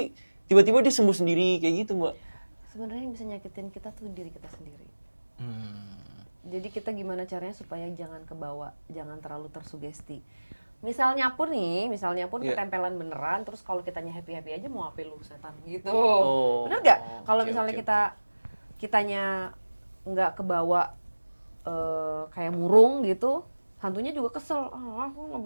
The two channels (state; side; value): inverted; both; correlation -1.00